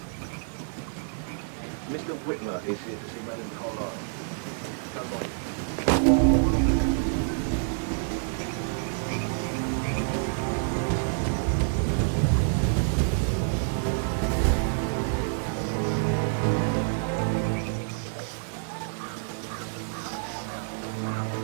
Mr. Whitmer is here to see Madame Carlyle. You can go right in.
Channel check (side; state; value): left; silent; digital silence